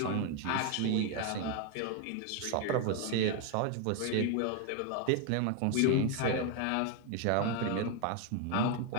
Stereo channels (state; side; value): different; both; correlation 0.01